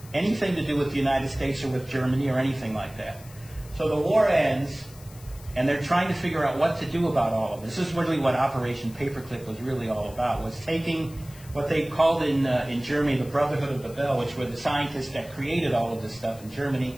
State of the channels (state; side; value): noise; left; hiss, 21 dB below the sound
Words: anything to do with the United States or with Germany or anything like that. So the war ends, and they're trying to figure out what to do about all of this. This is really what Operation Paperclip was really all about, was taking what they called in Germany the Brotherhood of the Bell, which were the scientists that created all of this stuff in Germany,